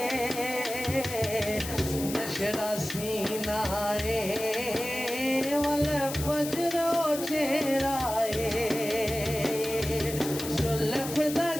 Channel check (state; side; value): noise; left; hiss, 8 dB below the sound